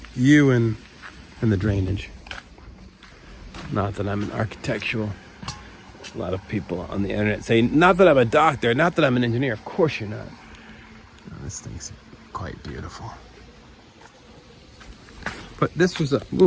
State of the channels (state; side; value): identical; both; correlation 1.00